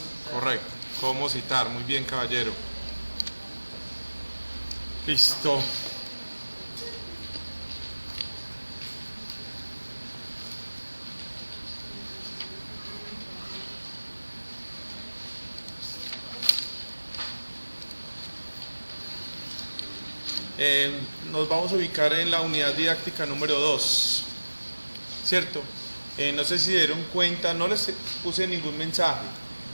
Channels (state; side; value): inverted; both; correlation -1.00